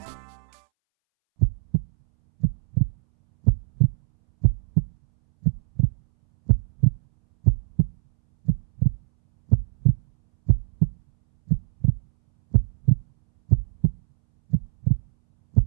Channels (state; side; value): silent; left; 64 dB below the other